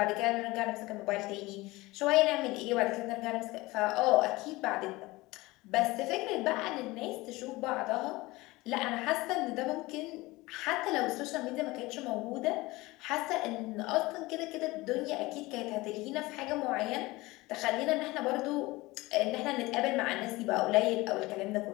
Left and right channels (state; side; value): quieter; right; 21.0 dB